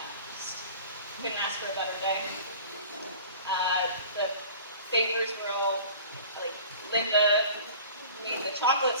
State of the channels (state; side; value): inverted; both; correlation -0.43